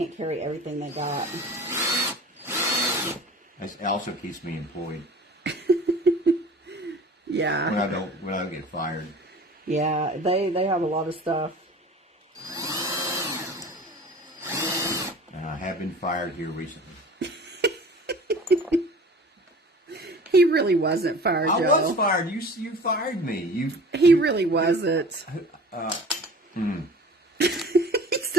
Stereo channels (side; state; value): both; normal; correlation 0.42